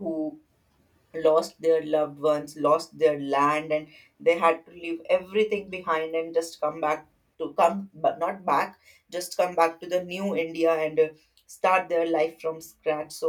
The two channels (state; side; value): identical; both; correlation 1.00